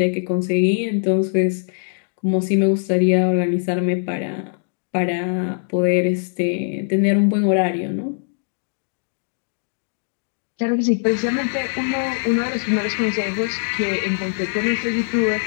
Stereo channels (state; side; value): silent; right; digital silence